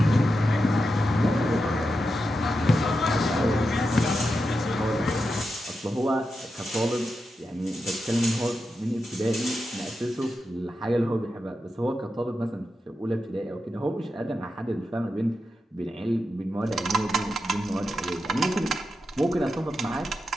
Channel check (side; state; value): both; normal; correlation 0.88